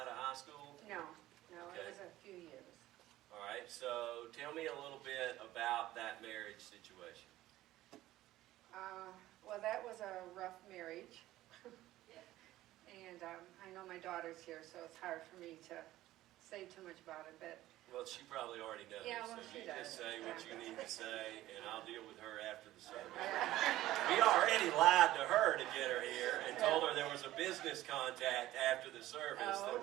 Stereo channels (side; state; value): left; quieter; 15.4 dB